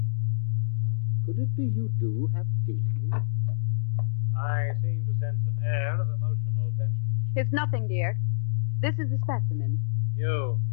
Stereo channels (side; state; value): right; silent; 60 dB below the other